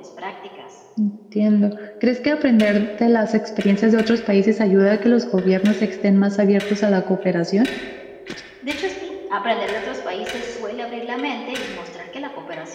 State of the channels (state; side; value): identical; both; correlation 1.00